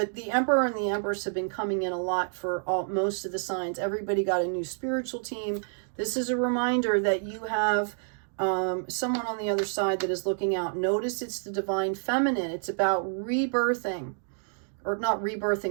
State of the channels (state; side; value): silent; left; 59 dB below the other